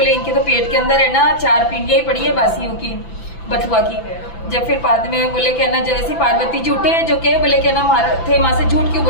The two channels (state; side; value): late; right; 5.9 ms